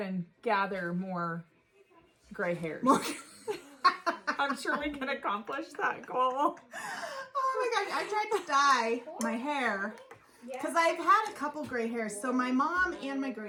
and gather more gray hairs. I'm sure we can accomplish that goal. Oh my gosh, I tried to dye my hair because I've had a couple gray hairs. So my mom and my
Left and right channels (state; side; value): identical; both; correlation 1.00